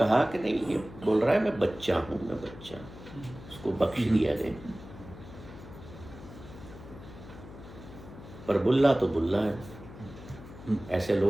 कि नहीं, ये बोल रहा है मैं बच्चा हूँ, मैं बच्चा, उसको बख्श दिया गया। पर बुल्ला तो बुल्ला है। ऐसे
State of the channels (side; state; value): left; noise; hum, 16 dB below the sound